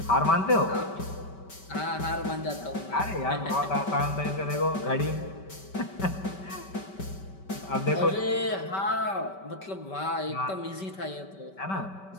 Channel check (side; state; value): right; late; 5.2 ms